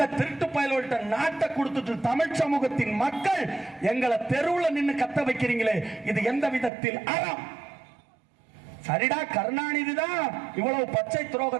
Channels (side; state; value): left; drops out; at 6.7 s